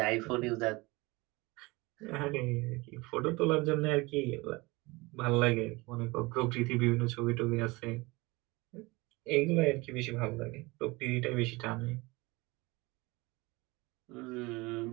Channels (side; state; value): left; quieter; 23.7 dB